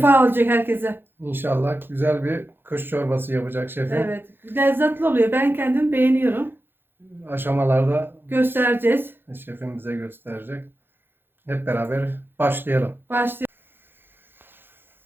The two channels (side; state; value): left; late; 0.10 ms